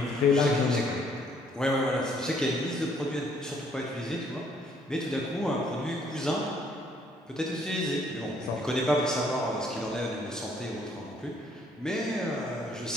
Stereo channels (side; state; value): both; normal; correlation 0.65